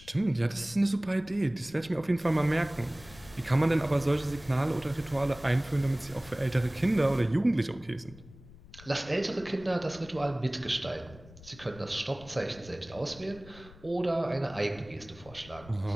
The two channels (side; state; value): left; noise; rumble, 20 dB below the sound